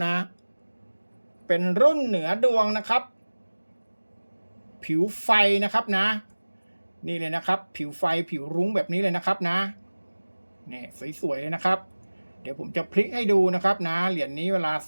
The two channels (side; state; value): both; inverted; correlation -1.00